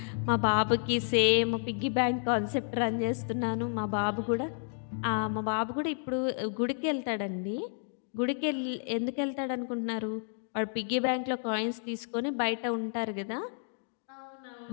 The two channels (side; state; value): right; silent; digital silence